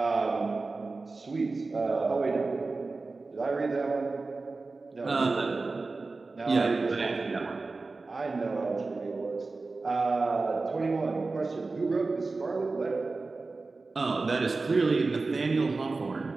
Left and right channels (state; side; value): quieter; left; 3.7 dB